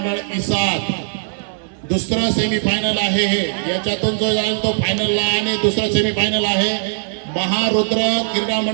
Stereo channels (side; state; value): left; silent; 57 dB below the other